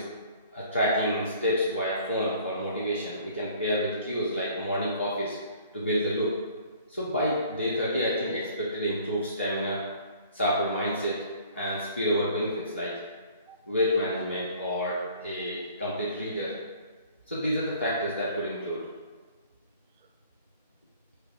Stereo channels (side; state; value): both; inverted; correlation -0.53